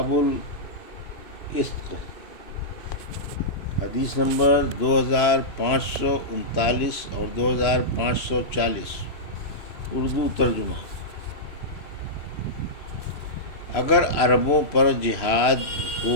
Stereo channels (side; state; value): right; late; 2.9 ms